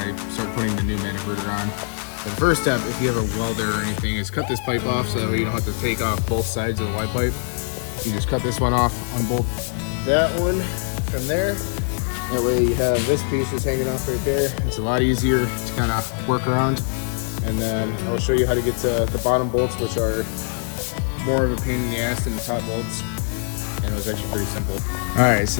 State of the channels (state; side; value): silent; right; 64 dB below the other